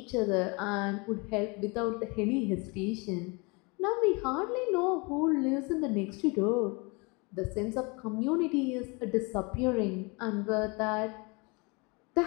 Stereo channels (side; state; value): right; quieter; 29.1 dB